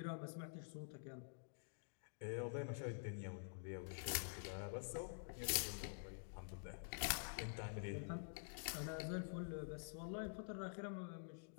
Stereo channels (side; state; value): right; silent; digital silence